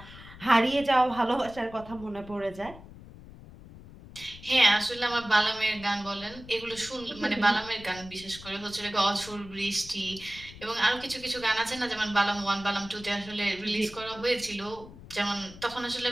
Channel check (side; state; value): left; noise; rumble, 17 dB below the sound